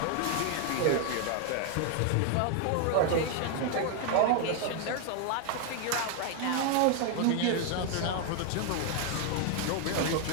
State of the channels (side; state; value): both; different; correlation 0.00